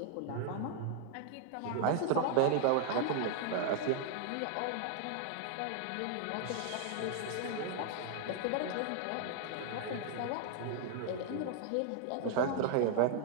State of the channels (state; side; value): different; both; correlation 0.00